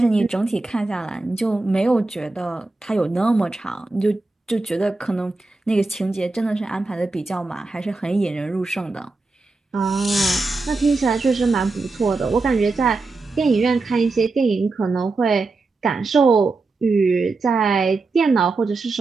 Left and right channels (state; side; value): quieter; left; 3.6 dB